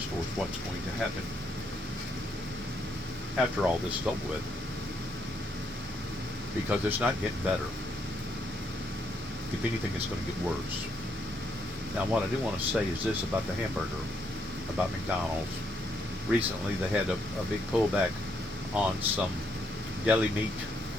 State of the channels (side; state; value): both; normal; correlation 0.75